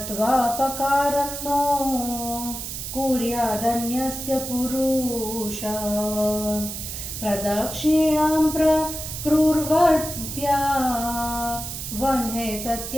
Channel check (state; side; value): noise; right; hiss, 7 dB below the sound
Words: पकारं नो कुर्यादन्यस्य पुरुषः प्रदक्षिणां प्रकुर्वत्या वह्ने